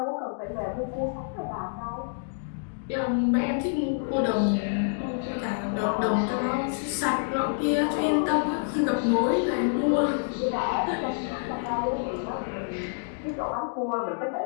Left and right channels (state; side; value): silent; right; digital silence